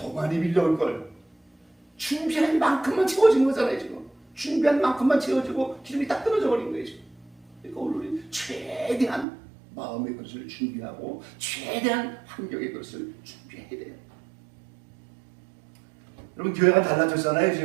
많이 빌려올 걸. 준비한 만큼만 채워진 거잖아요. 지금 준비한 만큼만 채워지고 기름이 딱 끊어져 버린 거예요. 지금. 그러니까 오늘 우리 최대한 마음의 것을 준비하고 최대한 환경의 것을 준비해야 돼요. 여러분 교회가 달라졌잖아요.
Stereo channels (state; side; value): drops out; left; at 9.2 s